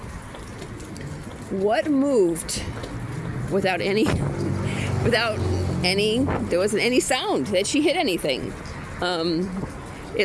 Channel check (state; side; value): identical; both; correlation 1.00